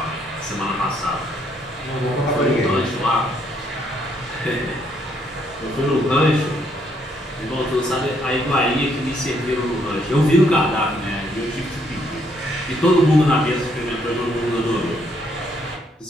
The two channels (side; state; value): both; normal; correlation 0.71